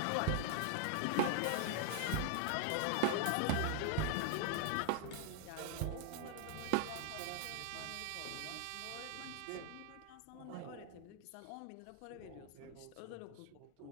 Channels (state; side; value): different; both; correlation 0.00